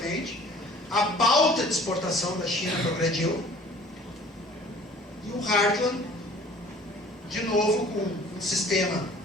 a pauta de exportação da China progrediu, e o Hartland, de novo com um sistema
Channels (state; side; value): normal; both; correlation 0.50